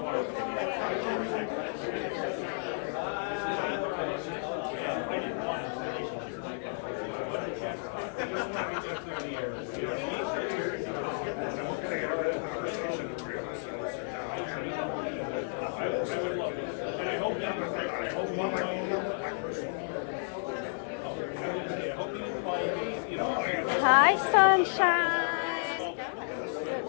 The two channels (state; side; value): silent; right; 56 dB below the other